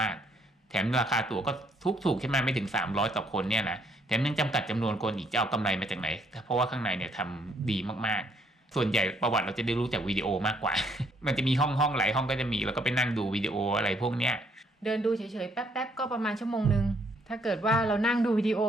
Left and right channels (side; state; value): both; normal; correlation 0.69